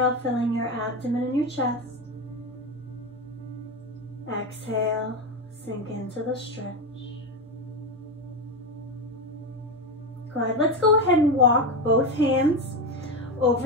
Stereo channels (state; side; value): normal; both; correlation 0.15